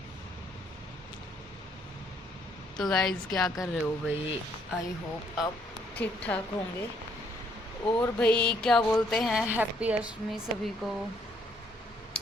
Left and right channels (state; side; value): normal; both; correlation 0.68